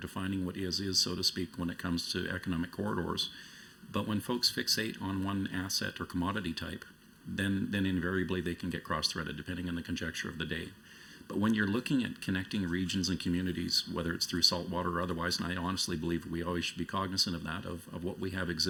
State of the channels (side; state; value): both; identical; correlation 1.00